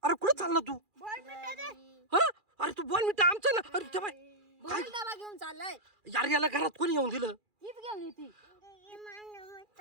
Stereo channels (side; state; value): left; late; 2.4 ms